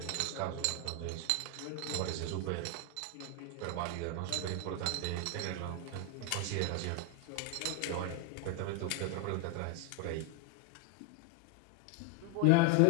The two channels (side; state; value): both; different; correlation 0.01